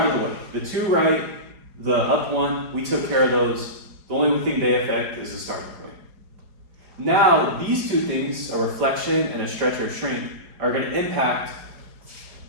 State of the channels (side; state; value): left; late; 4.8 ms